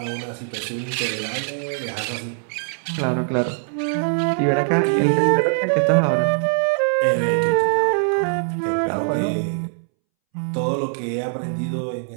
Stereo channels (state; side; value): silent; left; 64 dB below the other